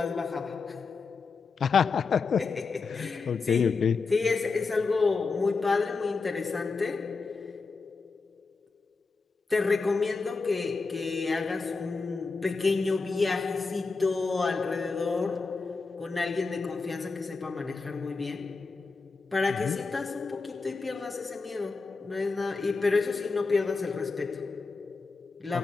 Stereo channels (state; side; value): quieter; right; 4.4 dB